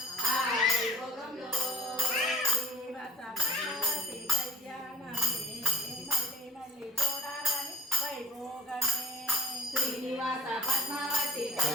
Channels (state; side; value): normal; both; correlation 0.46